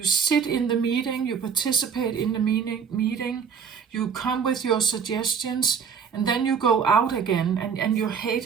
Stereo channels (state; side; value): quieter; left; 6.7 dB